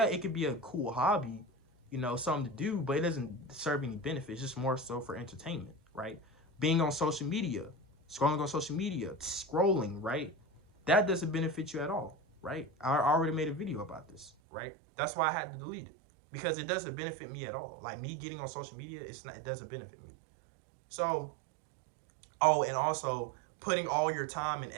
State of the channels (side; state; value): left; drops out; at 14.3 s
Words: it could be a cool hobby, you know, something to do, but it doesn't serve any benefits. It's just more so for entertainment, right? Being on social media, scrolling on social media, scrolling, right? That doesn't benefit you at all, right? I already made a video about this, right? That's why I had to delete it, because it doesn't benefit me at all. Like me getting on social media, it doesn't benefit me. So, oh, and also putting all your time and